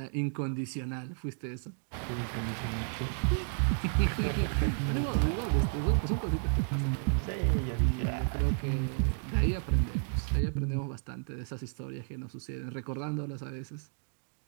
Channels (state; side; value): silent; left; 56 dB below the other